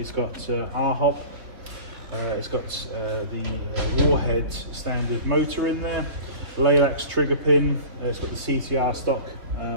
got R-hop. It's got the Warhead standard motor in there. Laylax Trigger Pin. It's got the CTR stock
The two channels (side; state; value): left; late; 3.8 ms